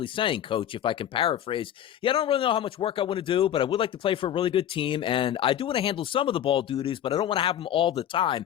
saying, Coach, if I can paraphrase, I don't really know how much work I want to do, but I would like to play for a really good team, and I do want to handle some of the ball duties, but I don't want to have them all the time.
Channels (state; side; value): quieter; right; 10.7 dB